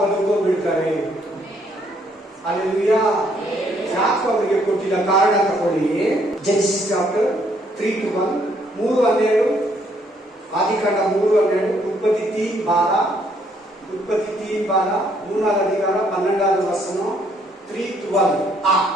ಅಲ್ಲೆಲೂಯಾ. ಯಾಕೆ ಅವರಿಗೆ ಕೊಟ್ಟಿಲ್ಲ? ಕಾರಣ ತಗೊಳ್ಳಿ. Genesis chapter 3:1, 3:12, ಆದಿಕಾಂಡ 3:12, ಉತ್ಪತ್ತಿ 3:12, ಉತ್ಪತ್ತಿ 3:12, 3ನೇ ಅಧಿಕಾರ 12ನೇ ವಚನ 3:12.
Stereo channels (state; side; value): normal; both; correlation 0.68